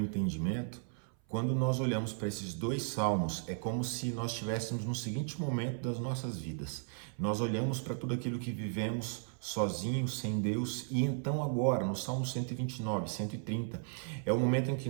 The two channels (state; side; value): silent; left; 54 dB below the other